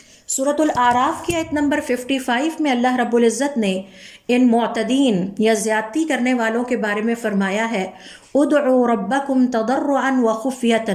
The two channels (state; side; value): identical; both; correlation 1.00